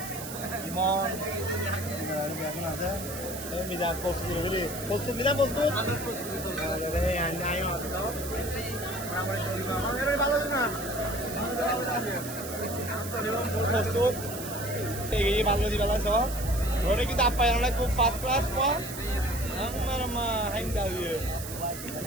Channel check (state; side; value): noise; right; hiss, 10 dB below the sound